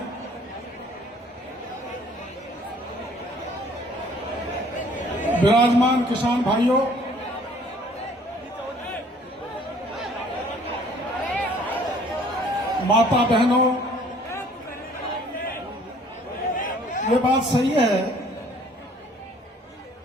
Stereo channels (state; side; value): normal; both; correlation 0.56